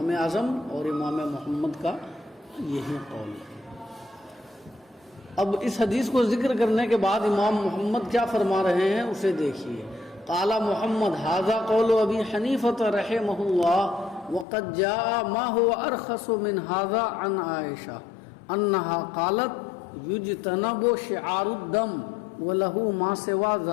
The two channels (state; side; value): drops out; right; at 14.5 s